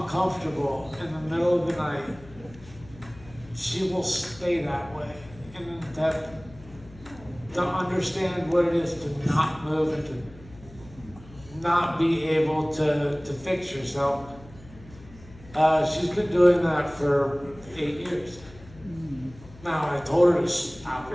in the middle of the night, she will stay that way in an attempt to understand what it is to not move and to not be able to fix yourself. She's been doing that for 8 years. Now, I told her to stop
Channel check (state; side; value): noise; left; hum, 21 dB below the sound